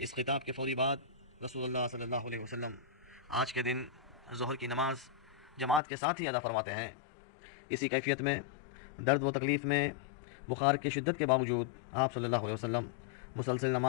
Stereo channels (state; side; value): drops out; right; at 5.8 s